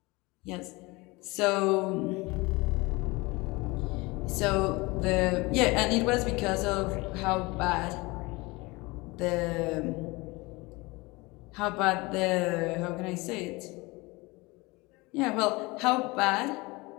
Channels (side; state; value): right; quieter; 23.9 dB